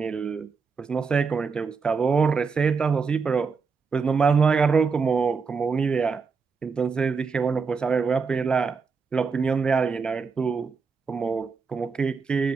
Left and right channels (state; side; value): quieter; left; 5.2 dB